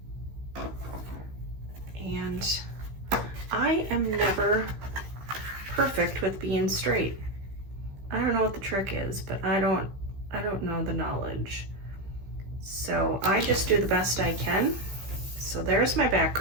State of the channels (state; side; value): late; left; 15 ms